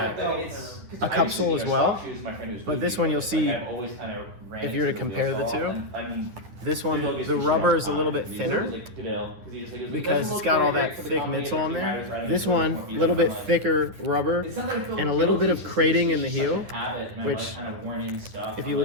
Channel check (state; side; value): late; left; 10 ms